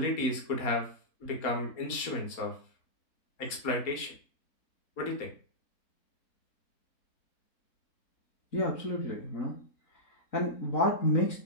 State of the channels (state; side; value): late; right; 4.3 ms